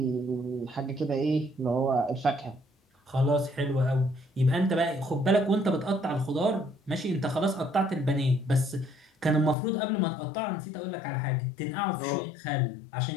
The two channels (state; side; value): drops out; right; at 9.6 s